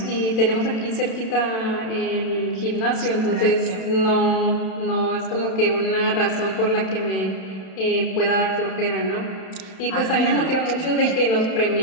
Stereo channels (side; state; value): right; late; 31 ms